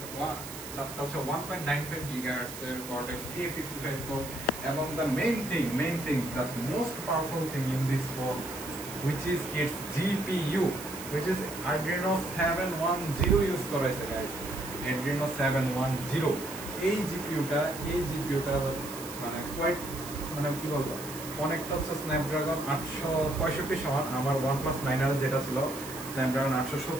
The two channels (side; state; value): right; noise; hiss, 12 dB below the sound